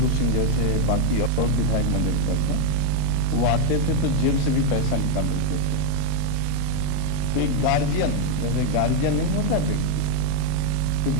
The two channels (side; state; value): both; different; correlation 0.00